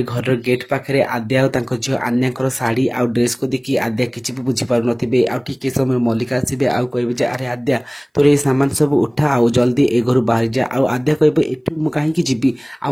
घर गेट पाखे आद्या और झील आन्या शाढ़ी आउ ड्रेस को देखी आद्या किसी भी बुझीपार थे आउ समय मल्लिका आसबे आउ कहे अरे आद्या तोर ये सामान सब उठा आउ जल्दी ए घर बाहर जा आउ आद्या कह एठू कहीं जी आ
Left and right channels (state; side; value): identical; both; correlation 1.00